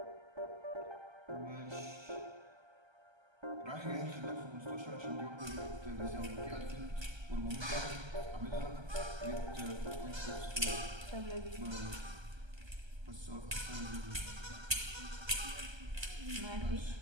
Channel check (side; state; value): left; late; 1.3 ms